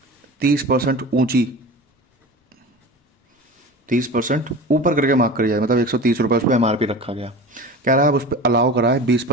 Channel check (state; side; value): normal; both; correlation 0.34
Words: 30% ऊंची, 30% ऊपर करके मार्क करी जाए, मतलब 130 रुपये उस पर MRP रखा गया। कह रहा है अब उस पर अलाउ करा है